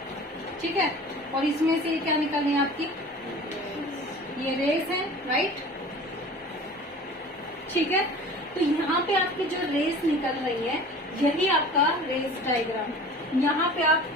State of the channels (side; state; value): both; normal; correlation 0.41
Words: ठीक है, और इसमें से क्या निकल रही है आपकी, ये रेज है, राइट। ठीक है, तो यहाँ पे आपकी जो रेज निकल रही है यही आपका रेज डायग्राम है। यहाँ पे आप